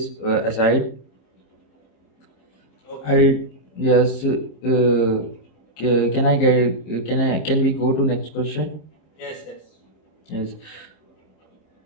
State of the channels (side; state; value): right; late; 26 ms